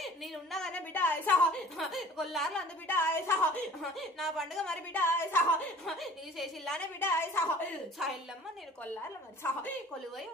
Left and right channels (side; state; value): both; normal; correlation 0.47